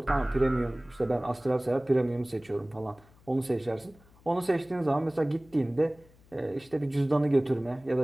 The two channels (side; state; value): left; noise; hum, 28 dB below the sound